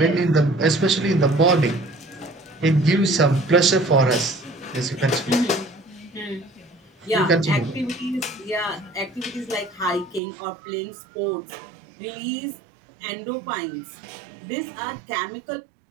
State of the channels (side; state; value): left; drops out; at 10.2 s